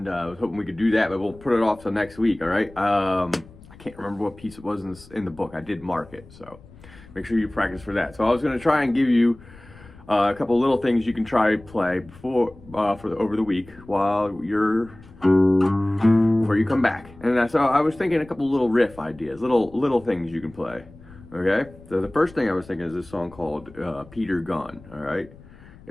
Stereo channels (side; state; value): left; noise; rumble, 22 dB below the sound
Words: I was hoping we could do that, but we'll put it off till next week. All right. I can't remember what piece it was in the book. I did mark it, so make sure you practice for that. So I was going to try and give you a couple little things you can try play over the week while you're before you come back. And so I was thinking a couple little riff ideas, little things you can play. Okay, so the first thing I was thinking is this song called Peter Gunn, all right?